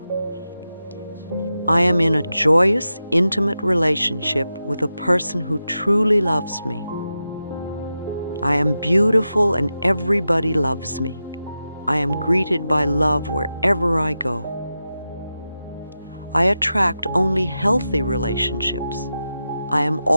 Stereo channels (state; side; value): inverted; both; correlation -0.91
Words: I am in a joyous, intimate relationship with a person who truly loves me. I am beautiful and everybody loves me. I am greeted by love wherever I go. I attract only healthy relationships. I am